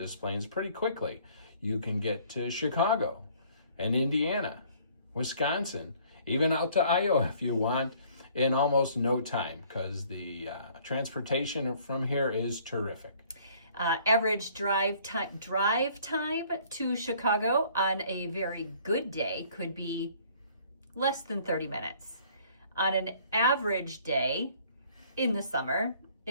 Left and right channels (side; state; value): both; inverted; correlation -0.58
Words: Plaines pretty quickly. You can get to Chicago and Indiana, Wisconsin, even out to Iowa if you want, in almost no time, because the transportation from here is terrific. Average drive time to Chicago on a very good day could be less than 30 minutes. On an average day in the summer,